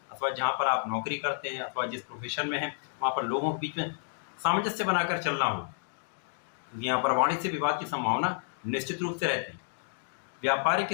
अथवा जहाँ पर आप नौकरी करते हैं अथवा जिस प्रोफेशन में हैं वहाँ पर लोगों के बीच में सामंजस्य बनाकर चलना होगा, क्योंकि यहाँ पर वाणी से विवाद की संभावना निश्चित रूप से रहती है। व्यापारिक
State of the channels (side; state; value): right; silent; digital silence